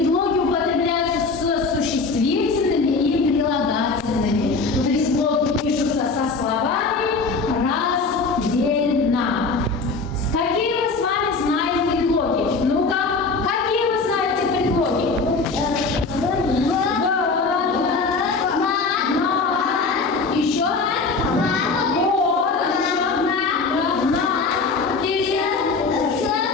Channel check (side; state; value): right; quieter; 4.2 dB